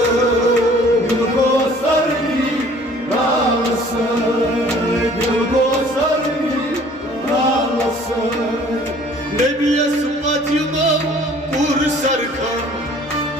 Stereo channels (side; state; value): both; normal; correlation 0.53